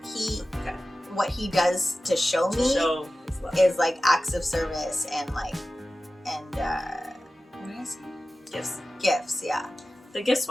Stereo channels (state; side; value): normal; both; correlation 0.95